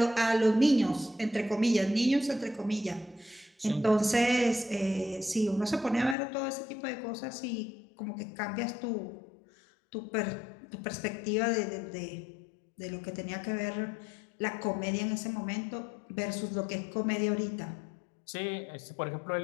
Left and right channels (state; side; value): drops out; right; at 6.2 s